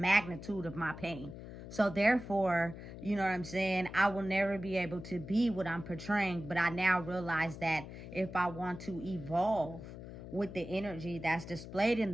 of my pain. So therefore, you know what I'm saying, I will never be able to be what I'm portraying. But I now realize that if I want to evolve with the energy that's displayed in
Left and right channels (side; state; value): left; noise; hum, 12 dB below the sound